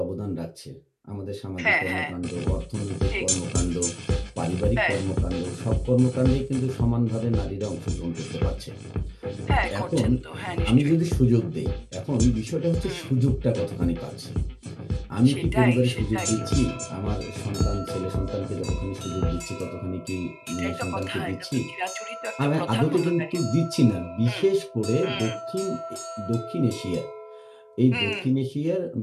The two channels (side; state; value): both; identical; correlation 1.00